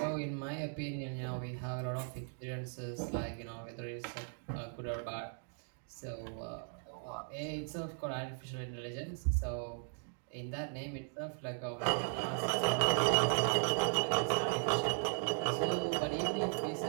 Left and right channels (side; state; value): left; silent; 53 dB below the other